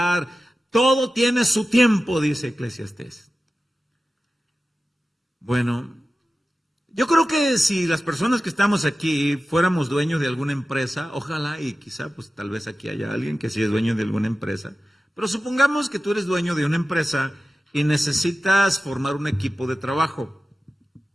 Todo tiene su tiempo, dice Eclesiastés. Bueno, yo creo que si las personas que estamos aquí fuéramos dueños de alguna empresa, ojalá y quizá pues tal vez aquí haya alguien que sí es dueño de alguna empresa, pero supongamos que tú eres dueño de una empresa y necesitas formar un equipo de trabajo.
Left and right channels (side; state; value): both; normal; correlation 0.95